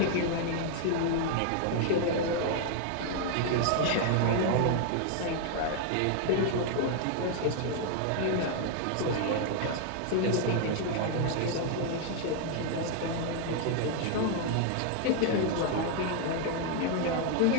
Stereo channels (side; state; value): both; different; correlation 0.00